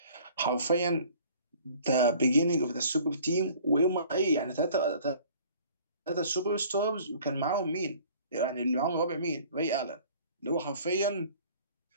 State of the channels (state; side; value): inverted; both; correlation -0.51